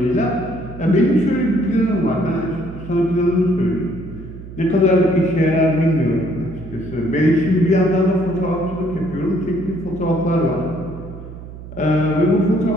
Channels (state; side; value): noise; right; hum, 14 dB below the sound